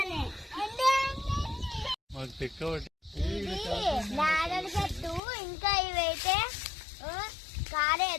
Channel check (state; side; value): drops out; right; at 5.2 s